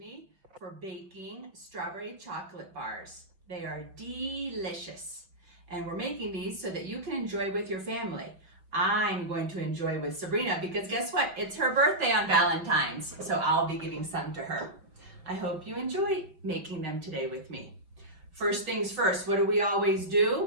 for baking strawberry chocolate bars. They are delicious. And we're making these so that you can enjoy with your family. I'm going to enjoy with Sabrina because guess what? It's her birthday on Valentine's, so I'll be giving some to her. I hope you enjoy making them today with me. First things first, what do we always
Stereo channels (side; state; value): left; late; 5.2 ms